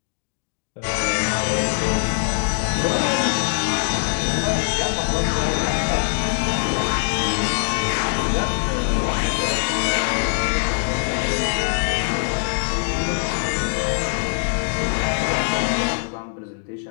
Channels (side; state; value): right; silent; digital silence